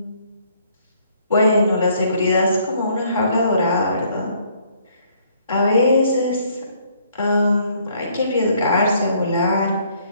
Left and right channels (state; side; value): inverted; both; correlation -0.64